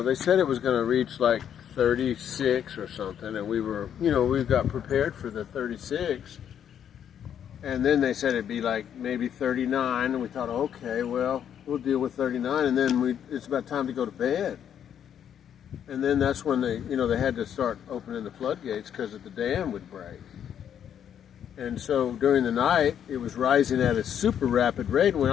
was going to reach like 36 or something, and we were, we got prepared for the 36. And then they said it'd be like maybe 39, and we thought, okay, well, we'll deal with 39, and then it's about time to go to bed. And then that's when they had to start opening the floodgates because the dam would break. And so during the night, it was rising at a super rapid rate. And when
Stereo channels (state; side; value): quieter; right; 9.1 dB